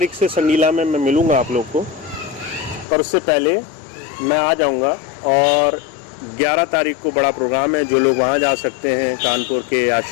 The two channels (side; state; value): right; drops out; at 2.9 s